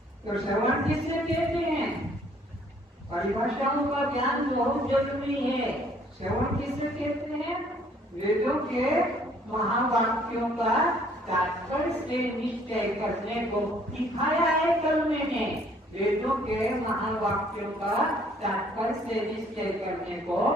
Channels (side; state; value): both; normal; correlation 0.61